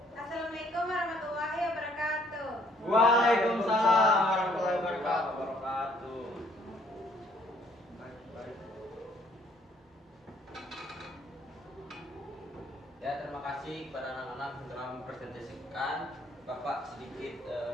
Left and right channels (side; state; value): both; normal; correlation 0.64